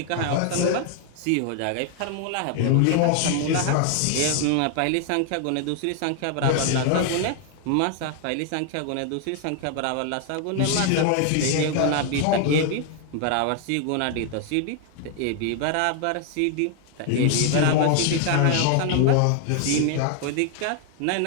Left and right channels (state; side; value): different; both; correlation 0.00